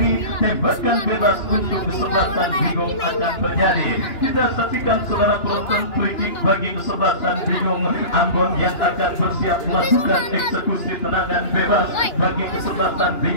Tembakan bebas untuk kesebelasan bingung akan terjadi. Kita saksikan saudara penonton, free kick bagi kesebelasan bingung Ambon yang akan bersiap melakukan eksekusi tendangan bebas bagi kesebelasan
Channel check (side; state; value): right; late; 2.9 ms